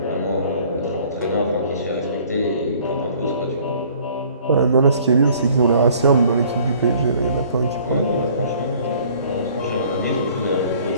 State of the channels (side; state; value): both; inverted; correlation -0.55